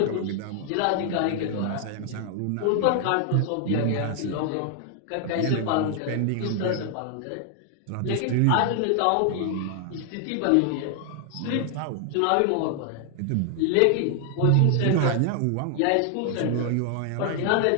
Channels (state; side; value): different; both; correlation 0.00